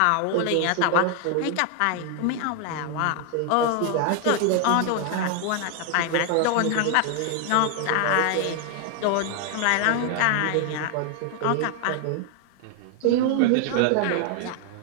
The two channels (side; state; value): both; different; correlation 0.00